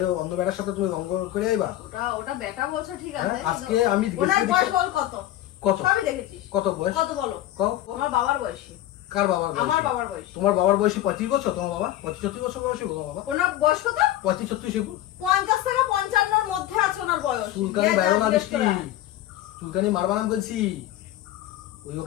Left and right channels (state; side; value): quieter; right; 13.9 dB